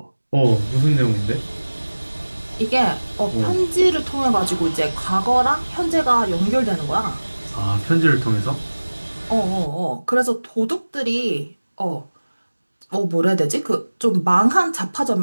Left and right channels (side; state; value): both; inverted; correlation -1.00